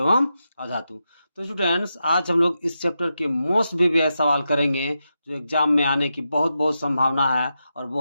अधातु। तो स्टूडेंट्स, आज हम लोग इस चैप्टर के मोस्ट प्रीवियस सवाल करेंगे जो एग्जाम में आने की बहुत बहुत संभावना है और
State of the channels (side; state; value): both; inverted; correlation -0.87